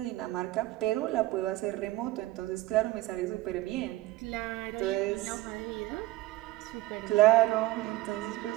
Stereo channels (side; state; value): left; quieter; 17.7 dB